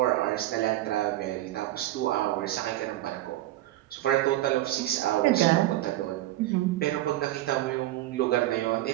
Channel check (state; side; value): quieter; left; 15.5 dB